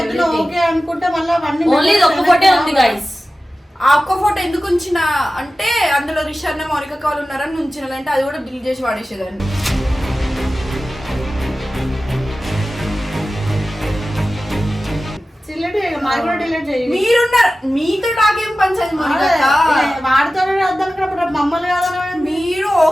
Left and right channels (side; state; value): both; normal; correlation 0.95